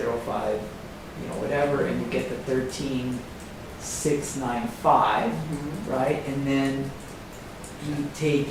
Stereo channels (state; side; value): identical; both; correlation 1.00